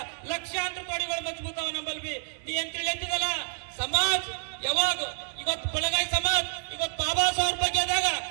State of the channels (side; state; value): left; silent; digital silence